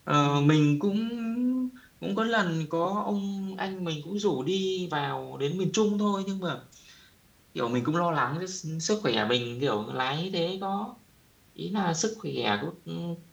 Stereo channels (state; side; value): identical; both; correlation 1.00